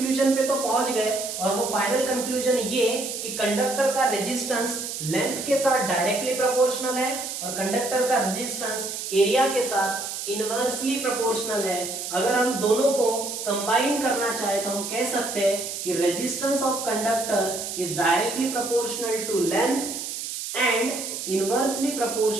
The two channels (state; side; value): noise; right; hiss, 6 dB below the sound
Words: पे तो पहुंच गए, और वो फाइनल कंक्लूजन ये कि कंडक्टर का रेजिस्टेंस लेंथ के साथ डायरेक्टली प्रोपोर्शनल है, और कंडक्टर का रेजिस्टेंस एरिया के साथ इनवर्सली प्रोपोर्शनल है। अगर हम दोनों को कंबाइन करना चाहे तो हम कह सकते हैं कि resistance of conductor is directly proportional to length and inversely